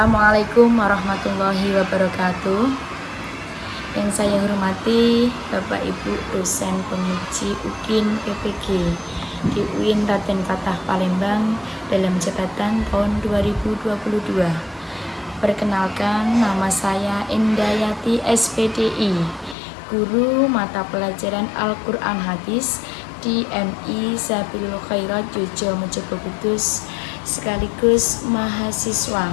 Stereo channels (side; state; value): right; drops out; at 19.6 s